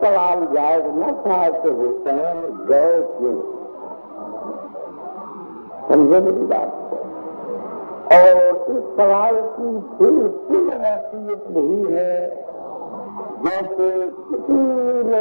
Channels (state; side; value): inverted; both; correlation -1.00